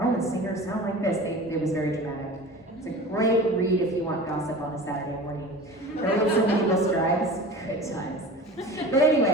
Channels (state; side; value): normal; both; correlation 0.36